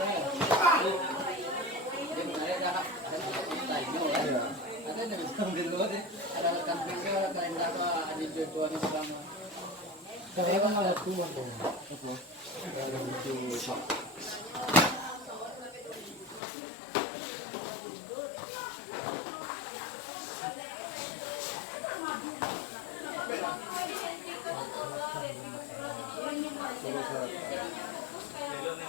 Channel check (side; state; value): right; drops out; at 16.4 s